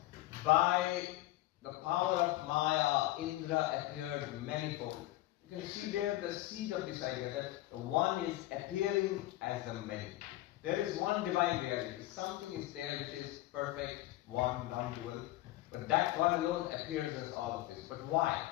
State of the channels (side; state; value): right; quieter; 16.7 dB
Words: by the power of Maya, Indra appeared manifold. You can see there the seed of this idea that one is appearing as the many. There is one divine reality. Something is there which is perfect, one, non-dual. But that one alone appears as all of this. But why?